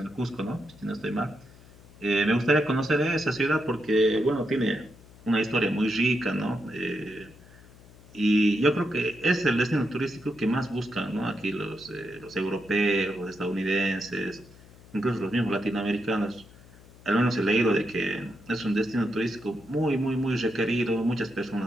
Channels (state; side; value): noise; left; hum, 23 dB below the sound